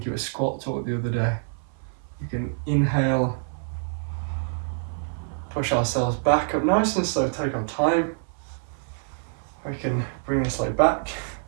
it was squat talk the other day. We can inhale, push ourselves back up nice and slow, take our time. We can bring this leg back,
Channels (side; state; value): left; silent; 57 dB below the other